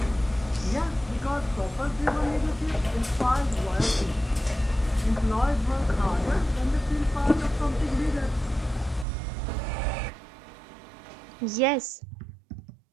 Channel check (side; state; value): left; drops out; at 9.1 s